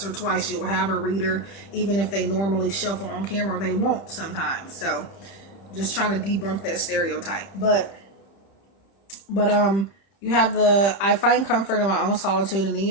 or twice, you'll have a reader, even if they normally shuffle on camera, they won't sometimes. So, just trying to debunk that stereotype. But you have the I find comfort in my own solitude, and then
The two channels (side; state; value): right; late; 30 ms